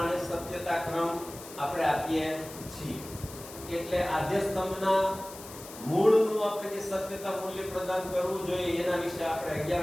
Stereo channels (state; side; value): noise; left; hiss, 15 dB below the sound